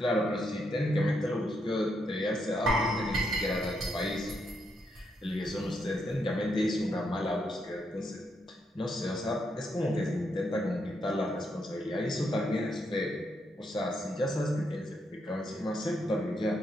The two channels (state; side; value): normal; both; correlation 0.79